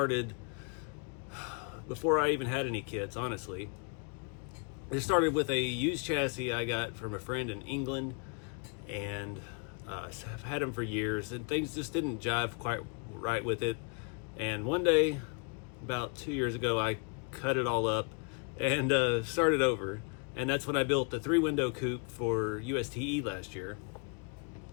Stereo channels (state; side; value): quieter; right; 38.7 dB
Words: before I even had any kits, honestly. It started with a used chassis I got from a friend in England, and I've had them for years, and things just didn't jive quite right with it. And one day, about 2 years ago, I cut it all up and started over. And that's when I built the 3-window coupe for USTE last year.